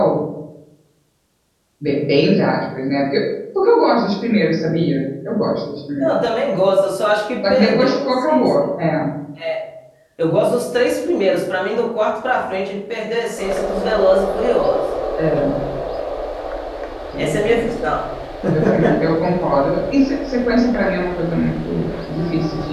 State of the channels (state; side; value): identical; both; correlation 1.00